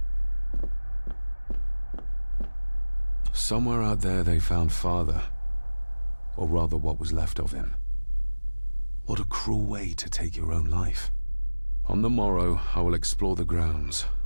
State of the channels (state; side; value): inverted; both; correlation -1.00